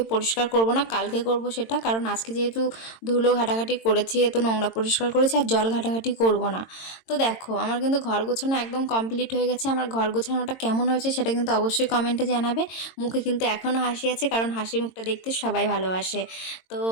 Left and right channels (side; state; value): right; late; 22 ms